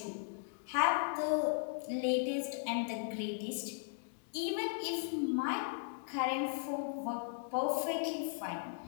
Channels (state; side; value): silent; right; digital silence